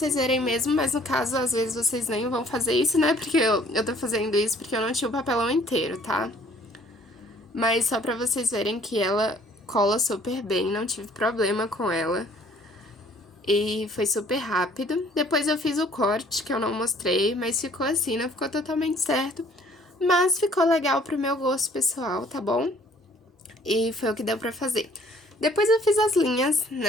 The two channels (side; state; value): both; normal; correlation 0.58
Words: verem mesmo, mas no caso, às vezes vocês nem vão fazer isso, né? Porque eu tô fazendo isso porque eu não tinha o papelão inteiro, tá? Mas só pra vocês verem que ela cola super bem, não tive problema com ela. E foi super rápido. Depois eu fiz o corte, que eu não mostrei, mas ficou assim, não ficou totalmente certo. Mas ficou legal pro meu gosto pessoal, tá bom? E foi o que deu pra fazer. Depois eu fiz as linhas,